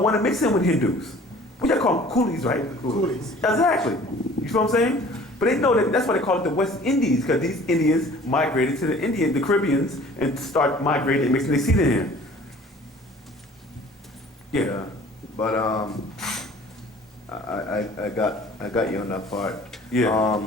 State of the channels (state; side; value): normal; both; correlation 0.49